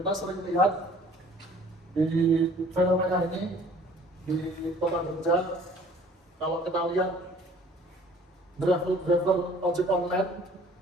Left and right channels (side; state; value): both; normal; correlation 0.53